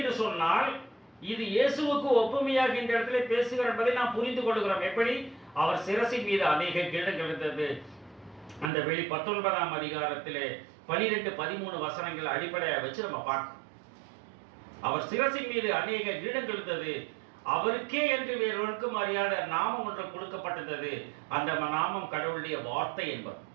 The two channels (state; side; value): drops out; left; at 8.7 s